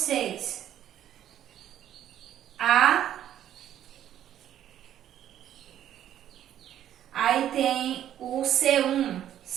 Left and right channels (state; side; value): quieter; left; 11.1 dB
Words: Aí tem o C1.